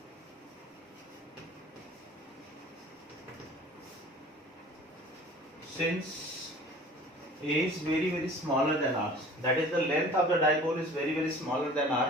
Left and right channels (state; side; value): normal; both; correlation 0.45